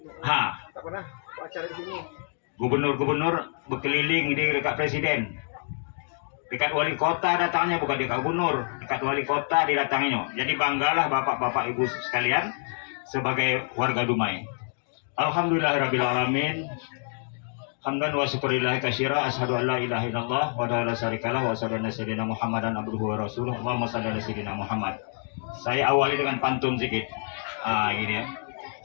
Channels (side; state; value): right; silent; 60 dB below the other